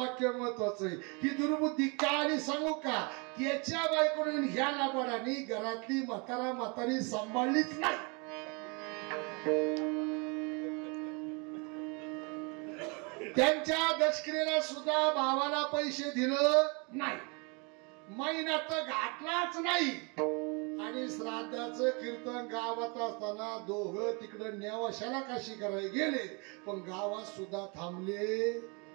महत्वाचं आहे. ही दुर्बुद्धी का आणि सांगू का? त्याच्या बायकोने ह्या नाबाडानी घरातली म्हातारी सांभाळलीच नाही. त्यांच्या दशक्रियेला सुद्धा भावाला पैसे दिलं नाही, महिन्यात घातलाच नाही. आणि श्राद्धाचं कीर्तन गावात असताना दोघं तिकडं नेवाशाला काशी करायला गेले, पण गावात सुद्धा थांबले.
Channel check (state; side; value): quieter; left; 32.0 dB